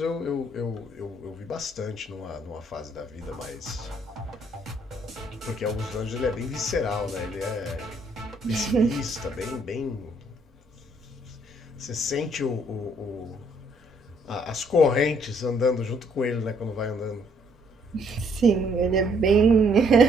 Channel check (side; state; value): both; normal; correlation 0.67